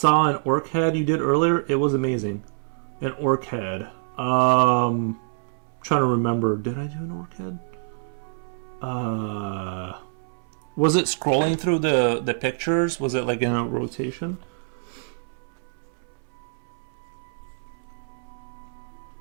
an orc head you did earlier. It was amazing. An orc head. Trying to remember. Did I do an orc head? Was it scrolling through the pictures? Was it like in a rotation?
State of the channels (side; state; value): left; silent; 61 dB below the other